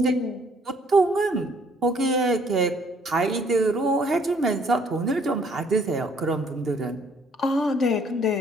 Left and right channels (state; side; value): normal; both; correlation 0.63